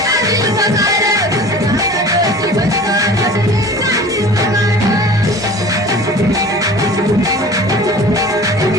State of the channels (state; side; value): normal; both; correlation 0.42